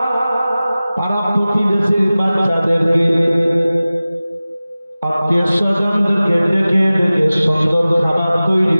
প্রতিবেশীর বাচ্চাদেরকে আত্মীয় স্বজনদেরকে ডেকে ডেকে সুন্দর খাবার তৈরি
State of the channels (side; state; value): both; inverted; correlation -0.97